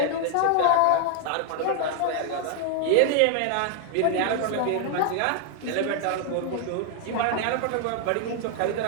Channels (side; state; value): both; different; correlation 0.00